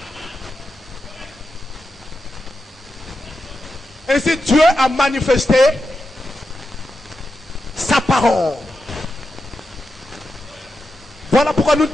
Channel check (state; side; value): normal; both; correlation 0.88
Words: Ainsi Dieu a manifesté sa parole. Voilà pourquoi nous